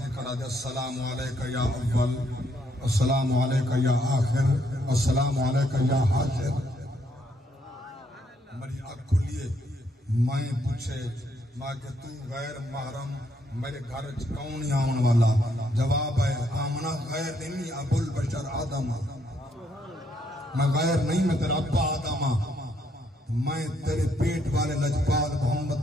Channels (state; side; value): normal; both; correlation 0.73